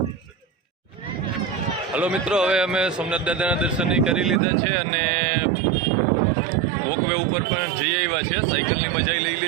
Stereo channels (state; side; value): drops out; left; at 4.4 s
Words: હલો મિત્રો, હવે અમે સોમનાથ દાદાના દર્શન કરી લીધા છે અને વોકવે ઉપર પણ જઈ આવ્યા છે. સાયકલની મજા લઈ